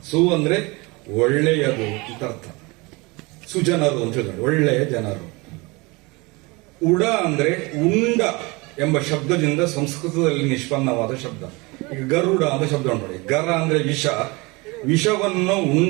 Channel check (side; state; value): left; quieter; 25.3 dB